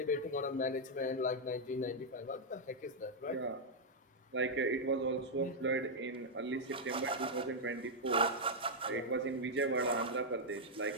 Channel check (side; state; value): both; normal; correlation -0.04